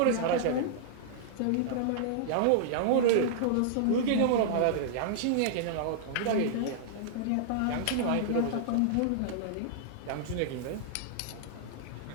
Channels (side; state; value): both; different; correlation -0.01